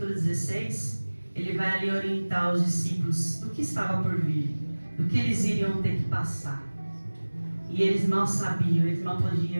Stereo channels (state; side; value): inverted; both; correlation -1.00